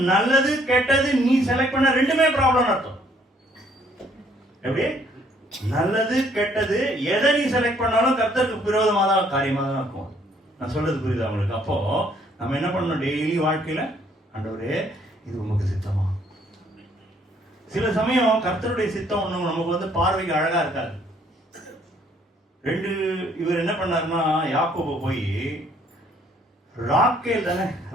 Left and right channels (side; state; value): both; normal; correlation 0.64